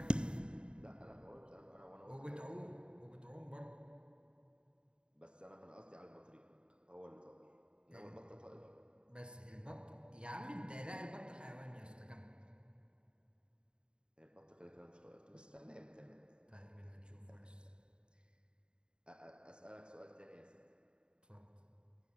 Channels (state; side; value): late; left; 0.050 ms